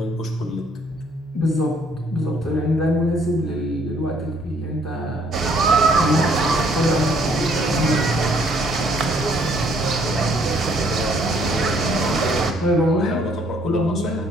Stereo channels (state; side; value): normal; both; correlation 0.64